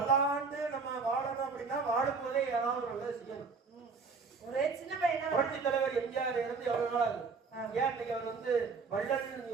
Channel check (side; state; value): left; quieter; 4.8 dB